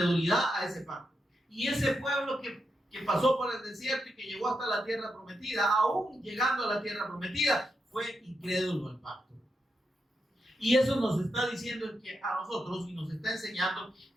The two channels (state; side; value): normal; both; correlation 0.85